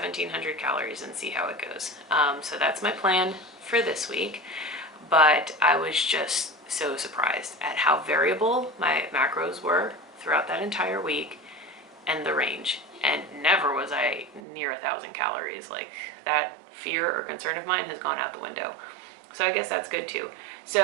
calories and see how it goes. So that's my plan for this week. But I was just so surprised at how variable my macros were throughout that entire week and the range. And never was I near 1,000 calories. Like, that fear or concern of mine has gone out the window. So I guess that's good too.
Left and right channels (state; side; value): drops out; left; at 14.4 s